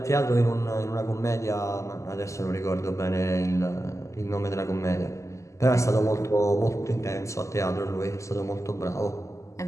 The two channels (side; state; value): right; late; 0.15 ms